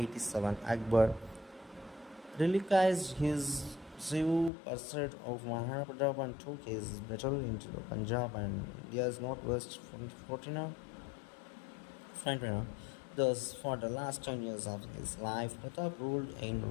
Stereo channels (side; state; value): right; drops out; at 4.5 s